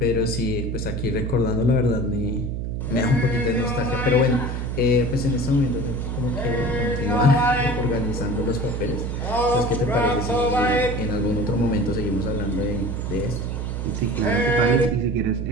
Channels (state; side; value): noise; right; hum, 3 dB below the sound